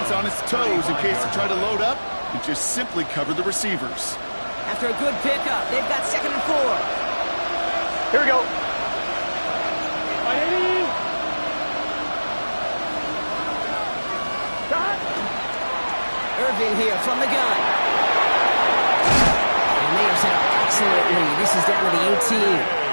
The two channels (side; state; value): both; inverted; correlation -1.00